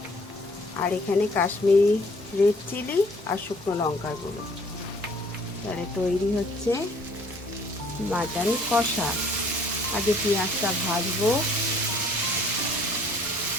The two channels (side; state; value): both; normal; correlation 0.59